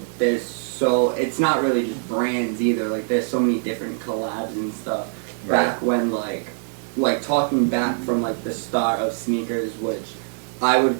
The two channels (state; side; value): silent; left; 61 dB below the other